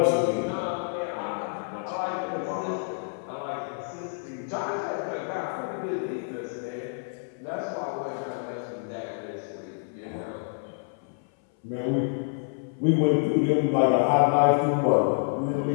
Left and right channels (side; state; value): right; silent; 59 dB below the other